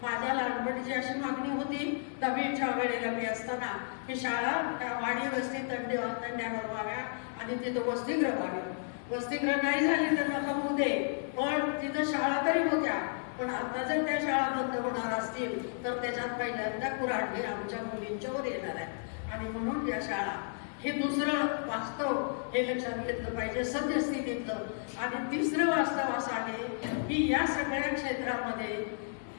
माझ्या लहानपणीची अशी मागणी होती 10वीच्या वेळेला मी असताना की शाळा त्या वाडी वस्ती तांड्यावर व्हाव्या आणि तिथं वसतिगृह व्हावे. वसतिगृह नाही झाली तर नका होऊ दे पण तिथं शाळा तरी होत्या पण आता जर त्या शाळा बंद होणार असतील तर त्याच्यात पहिल्यांदा कुऱ्हाडी आमच्या मुलींच्यावर येणार आहे आणि म्हणून या शाळा हे दुसरं वास्तव हे लक्षात घेतलं पाहिजे सद्यस्थितीतलं. आणि तिसरं वास्तव असं आहे की या सगळ्या क्षेत्रामध्ये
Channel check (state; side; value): silent; right; digital silence